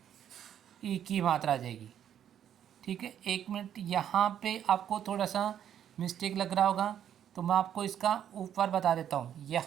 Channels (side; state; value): left; quieter; 9.8 dB